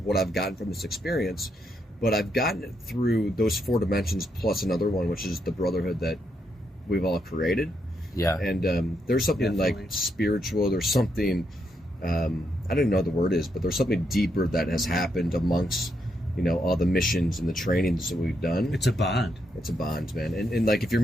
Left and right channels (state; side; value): normal; both; correlation 0.79